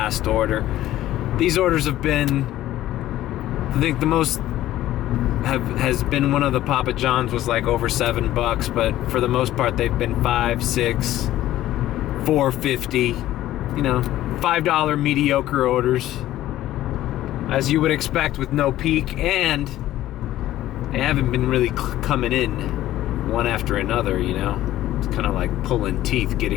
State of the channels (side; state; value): right; quieter; 14.2 dB